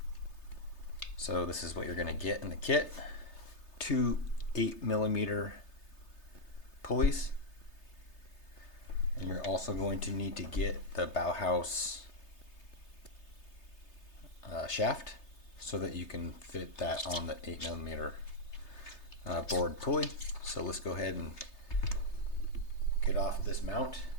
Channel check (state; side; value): late; right; 3.3 ms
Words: So this is what you're going to get in the kit. Two 8mm pulleys. And you're also going to need to get the BowHouse shaft so that you can fit that on the 8mm board pulley. So let's go ahead and get off this mount